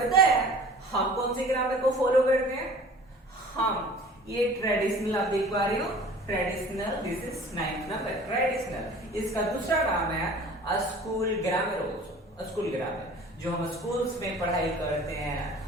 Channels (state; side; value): normal; both; correlation 0.45